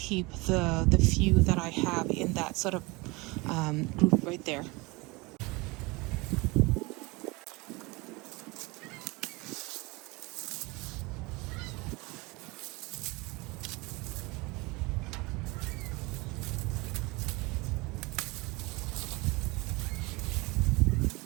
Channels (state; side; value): quieter; left; 24.8 dB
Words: the few that I have in that sort of group right there.